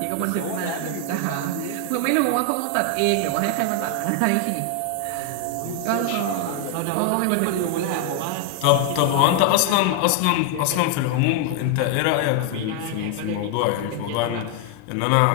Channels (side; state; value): both; different; correlation 0.01